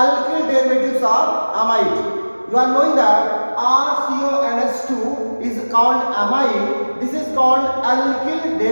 derivatives of amide. You are knowing that RCONH2 is called amide. This is called alkyl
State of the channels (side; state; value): both; inverted; correlation -1.00